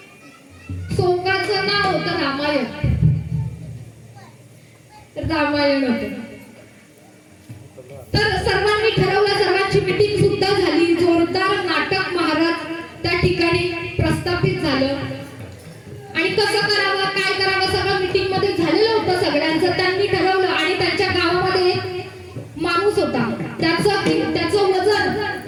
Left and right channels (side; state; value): both; identical; correlation 1.00